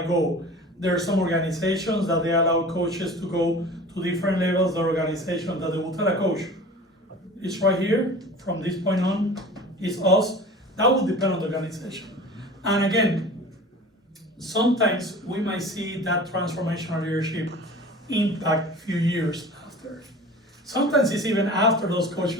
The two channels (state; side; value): normal; both; correlation 0.40